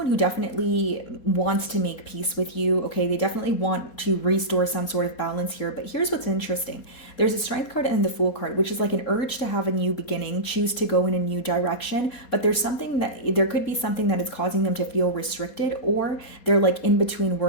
who definitely wants to make peace with you, okay. They definitely want to restore some sort of balance here, but here's what's interesting. There's a Strength card and the Fool card, which is like an urge to have a new beginning, choose to go in a new direction, but there could be something that is causing them to feel restricted, or they're like in between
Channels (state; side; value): late; right; 4.2 ms